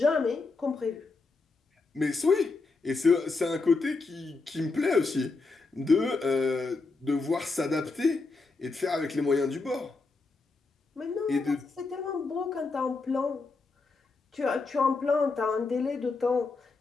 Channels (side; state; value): right; quieter; 3.9 dB